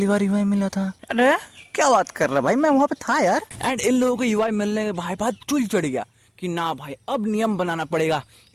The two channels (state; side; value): identical; both; correlation 1.00